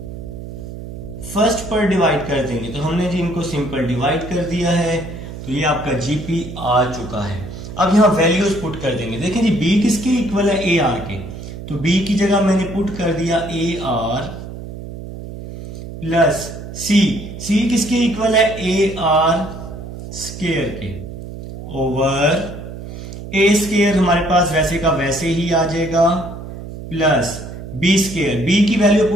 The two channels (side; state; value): right; noise; hum, 11 dB below the sound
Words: फर्स्ट पर डिवाइड कर देंगे, तो हमने जी इनको सिंपल डिवाइड कर दिया है, तो ये आपका जीपी आ चुका है। अब यहां वैल्यूज पुट कर देंगे। देखें जी बी किसके इक्वल है, ए आर के, तो बी की जगह मैंने पुट कर दिया ए आर प्लस सी, सी किसके इक्वल है, ए आर स्क्वायर के, ओवर ए स्क्वायर हमारे पास वैसे का वैसे ही आ जाएगा, प्लस बी स्क्वायर, बी की वैल्यू